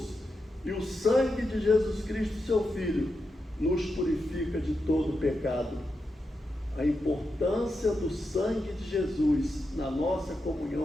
e o sangue de Jesus Cristo, seu Filho, nos purifica de todo pecado. A importância do sangue de Jesus na nossa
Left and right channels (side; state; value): both; normal; correlation 0.87